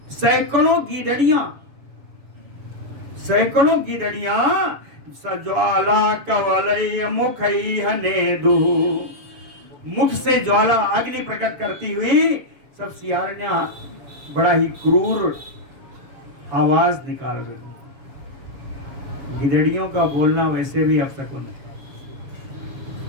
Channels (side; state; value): left; late; 6.9 ms